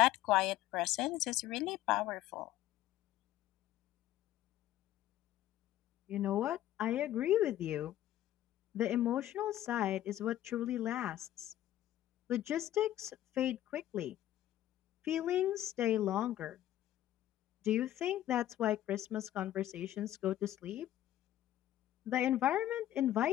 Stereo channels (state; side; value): quieter; right; 13.3 dB